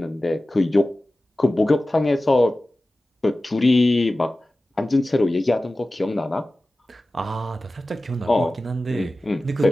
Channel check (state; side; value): normal; both; correlation 0.96